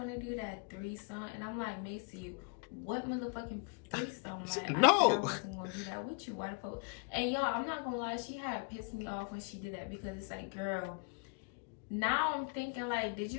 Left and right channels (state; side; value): quieter; right; 36.5 dB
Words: to do that threesome? And I'm like, Macy, what motherfucking threesome? Like, no, I wasn't gonna do that with you. Why the fuck? And y'all, I'm not gonna lie, she had pissed me off when she did that, because it's like, girl, now I'm thinking like, did